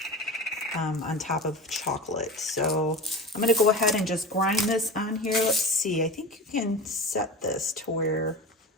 on top of chocolate. So I'm going to go ahead and just grind this on here. Let's see. I think you can set this to where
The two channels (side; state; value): both; normal; correlation 0.29